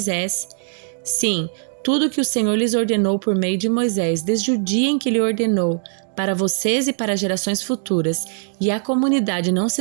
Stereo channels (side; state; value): left; silent; 65 dB below the other